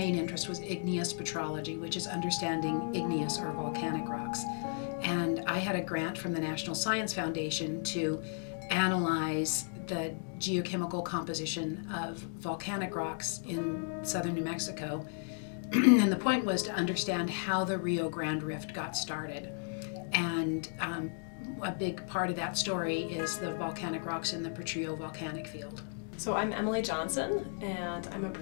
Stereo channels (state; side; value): silent; right; 55 dB below the other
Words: interest was igneous petrology, which is understanding igneous or volcanic rocks. And I had a grant from the National Science Foundation to analyze the geochemical composition of volcanic rocks in southern New Mexico. And the point was to understand how the Rio Grande Rift got started. And a big part of that story is the volcanic rocks in the Potrillo volcanic field. So I'm Emily Johnson, and I'm a